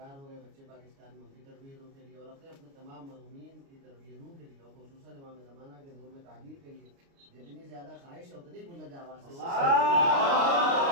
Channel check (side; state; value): left; late; 29 ms